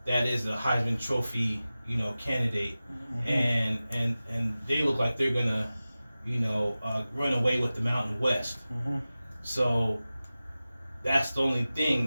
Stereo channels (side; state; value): both; inverted; correlation -0.96